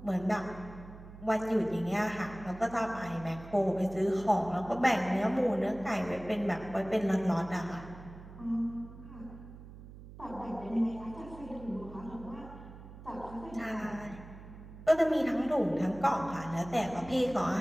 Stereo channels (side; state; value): right; noise; hum, 16 dB below the sound